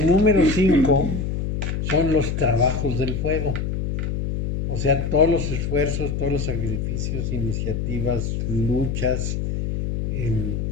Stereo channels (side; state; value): left; noise; hum, 2 dB below the sound